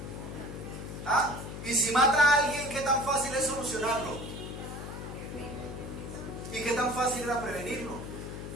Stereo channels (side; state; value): left; noise; hum, 8 dB below the sound